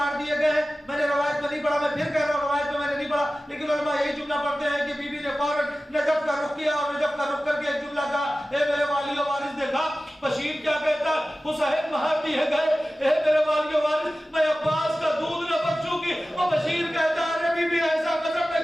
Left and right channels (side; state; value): both; normal; correlation 0.96